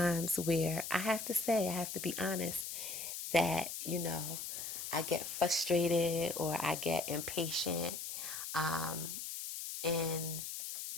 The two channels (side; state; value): left; noise; hiss, 6 dB below the sound